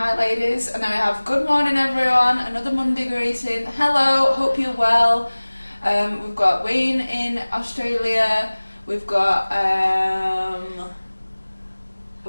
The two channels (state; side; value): inverted; both; correlation -1.00